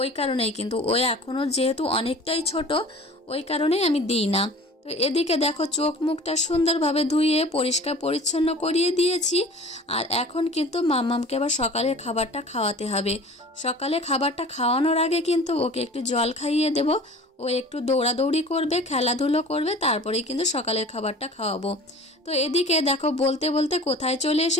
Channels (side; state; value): both; normal; correlation 0.42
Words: কারণেই। কিন্তু ও এখনও যেহেতু অনেকটাই ছোট, ওই কারণেই আমি দিই না। তো এদিকে দেখো চোখ মুখটা সুন্দরভাবে ধুয়ে পরিষ্কার পরিচ্ছন্ন করিয়ে দিয়েছি। আর এখন কিন্তু মাম্মামকে আবার সকালের খাবারটা খাওয়াতে হবে। সকালে খাবারটা খাওয়ানোর আগে কিন্তু ওকে একটু জল খাইয়ে দেব, ও একটু দৌড়াদৌড়ি করবে, খেলাধুলো করবে, তারপরেই কিন্তু সকালের খাবারটা খাওয়াবো। তো এদিকে দেখো বলতে বলতে কোথায় চলে